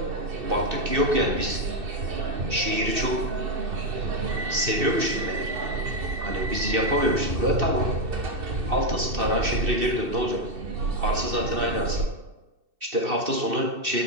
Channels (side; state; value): left; late; 2.6 ms